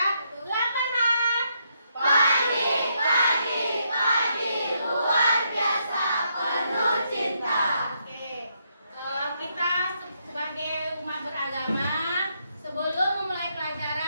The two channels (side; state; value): both; inverted; correlation -0.77